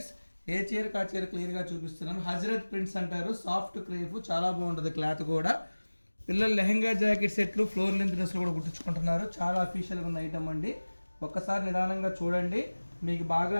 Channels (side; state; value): both; inverted; correlation -1.00